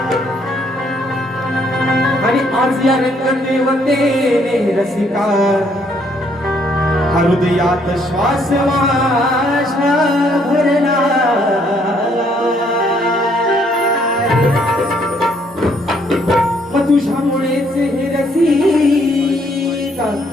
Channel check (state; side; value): normal; both; correlation 0.68